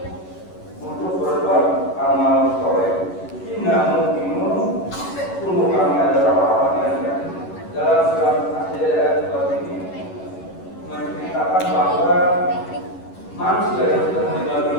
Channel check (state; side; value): late; right; 11 ms